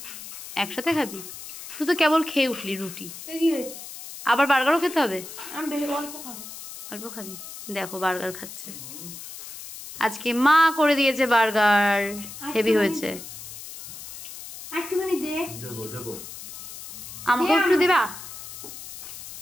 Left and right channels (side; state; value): left; noise; hiss, 12 dB below the sound